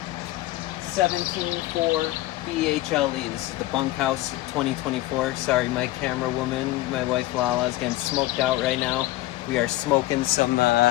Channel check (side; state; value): right; quieter; 17.3 dB